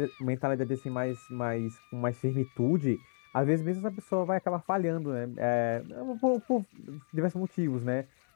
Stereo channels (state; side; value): silent; right; 57 dB below the other